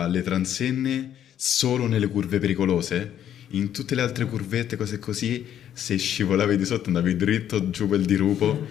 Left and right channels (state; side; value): quieter; right; 10.3 dB